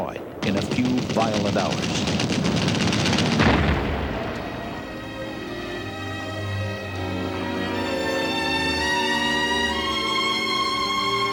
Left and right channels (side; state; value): both; identical; correlation 1.00